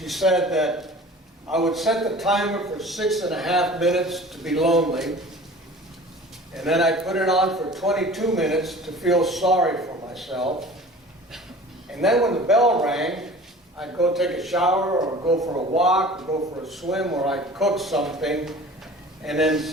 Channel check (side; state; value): both; normal; correlation 0.43